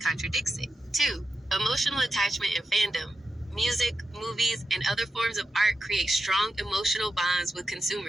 it. 2. Emotional attachment and fandom. Music, movies, and other forms of art create strong emotional bonds with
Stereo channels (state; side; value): normal; both; correlation 0.89